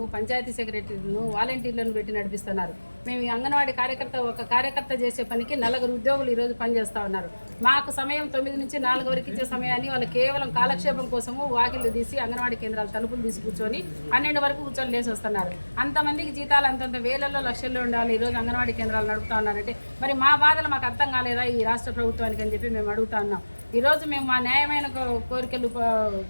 పంచాయతీ సెక్రటరీలను, వాలంటీర్లను పెట్టి నడిపిస్తున్నారు. మేము ఈ అంగన్వాడీ ఒక కార్యకర్త చేసే పనికి 4 ఉద్యోగులు ఈరోజు పనిచేస్తూ ఉన్నారు. మాకు సమయం 9 నుంచి 4 వరకు ఇచ్చే సమయాన్ని వాళ్ళు కేవలం కాలక్షేపం కోసము వాకిళ్ళు తీసి అంగన్వాడీ కేంద్రాలు తలుపులు తీసి కూర్చొని 12 వరకు కూర్చొని లేసి వస్తున్నారు. అంతమందికి జీతాలు అంతంత వేలల్లో లక్షల్లో ఉండాలి. ఈరోజు అంగన్వాడీ కేంద్రాలు నడుపుతా ఉన్నారంటే మరి మా బాధలు మాకు అర్థం కాలేదా ఈ రాష్ట్ర ప్రభుత్వానికి అని చెప్పి మేము అడుగుతా ఉన్నాం. ఈరోజు మేము మా న్యాయమైన కోరికలు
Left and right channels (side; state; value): both; inverted; correlation -1.00